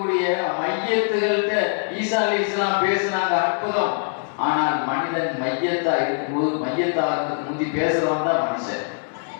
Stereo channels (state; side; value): silent; right; 61 dB below the other